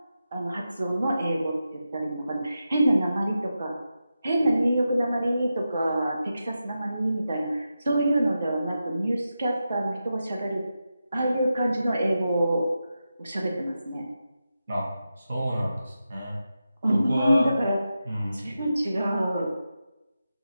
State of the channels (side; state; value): both; inverted; correlation -0.90